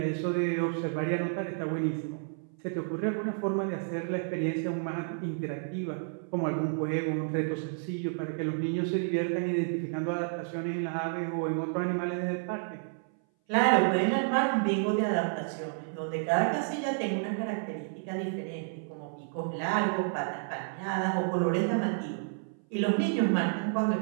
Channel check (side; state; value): left; silent; 57 dB below the other